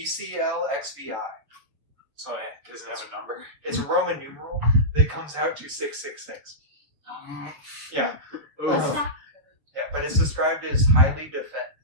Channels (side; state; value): left; late; 7.0 ms